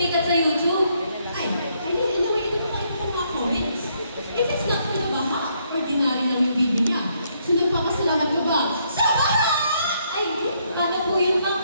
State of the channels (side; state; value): both; inverted; correlation -0.73